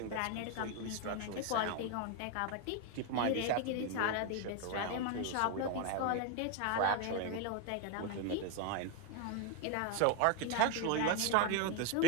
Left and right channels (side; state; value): both; different; correlation 0.01